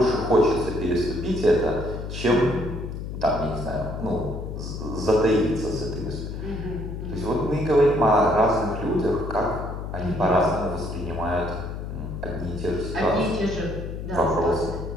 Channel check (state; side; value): noise; left; hum, 7 dB below the sound